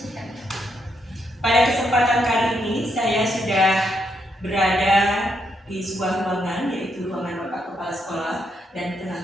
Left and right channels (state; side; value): normal; both; correlation 0.78